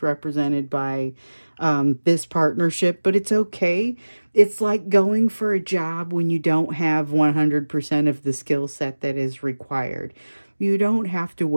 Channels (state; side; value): inverted; both; correlation -1.00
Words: represented by this partnership, but it's okay. It's like going for a job when you don't have 100% of the skill set that is required. You don't have to